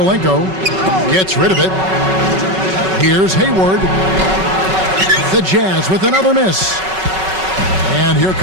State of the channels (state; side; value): late; left; 5.3 ms